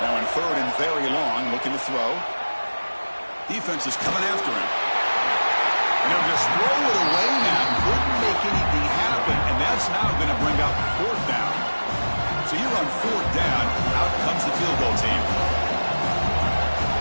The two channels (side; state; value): both; inverted; correlation -1.00